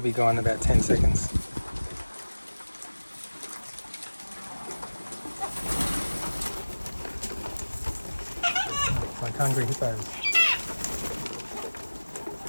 be gone in about 10 seconds. It's like hungry hippos.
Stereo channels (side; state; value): both; inverted; correlation -1.00